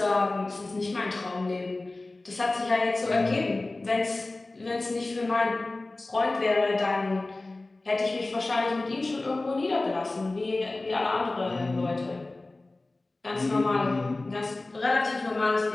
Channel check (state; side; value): quieter; right; 3.0 dB